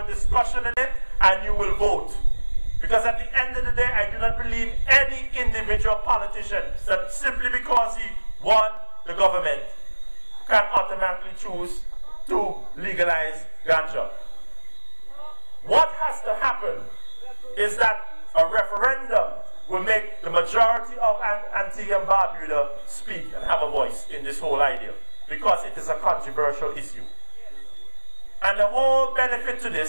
discussion in it, and you will vote. Because at the end of the day, I do not believe any individual politician that simply because he won the government can automatically choose to legalize ganja. What has to happen is that a referendum will make the majority of Antigua and Barbuda speak and have a voice in this whole idea, because it is a controversial issue. And the whole benefit to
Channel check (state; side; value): inverted; both; correlation -1.00